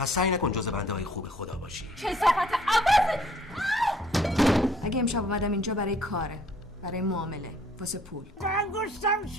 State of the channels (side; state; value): both; normal; correlation 0.60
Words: سعی نکن جز بنده های خوب خدا باشی. کثافت عوض. اگه امشب اومدم اینجا برای کاره، برای معامله، واسه پول. انگشتم